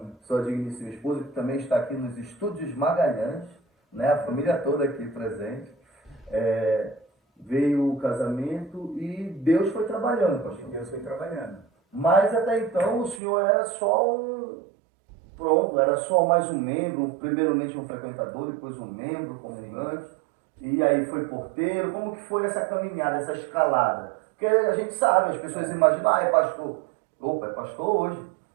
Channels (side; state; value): left; drops out; at 13.2 s